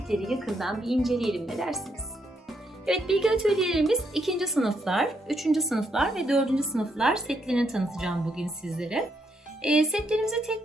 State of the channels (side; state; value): both; normal; correlation 0.77